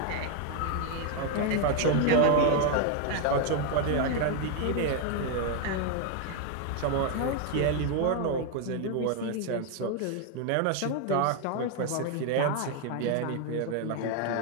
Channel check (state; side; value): different; both; correlation 0.01